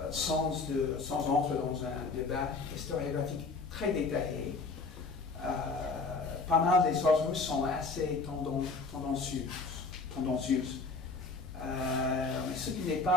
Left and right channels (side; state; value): right; quieter; 4.0 dB